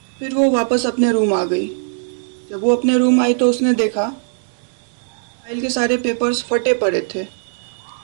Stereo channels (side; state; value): left; silent; digital silence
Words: फिर वो वापस अपने रूम आ गई। जब वो अपने रूम आई तो उसने देखा फाइल के सारे पेपर्स फटे पड़े थे।